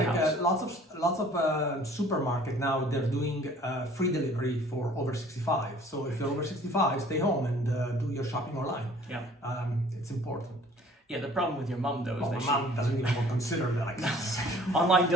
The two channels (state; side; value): normal; both; correlation 0.53